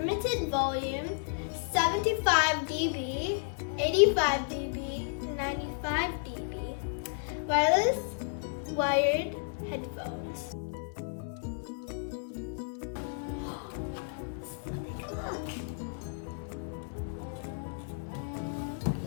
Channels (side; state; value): right; silent; 56 dB below the other